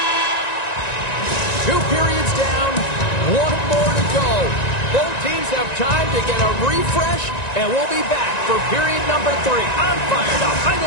2 periods down, 1 more to go. Both teams have time to get a refresh, and we'll be back for period number 3. I'm fired up. I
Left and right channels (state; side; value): late; right; 1.9 ms